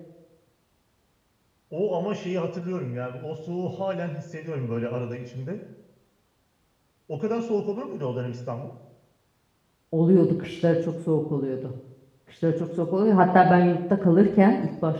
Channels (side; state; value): both; identical; correlation 1.00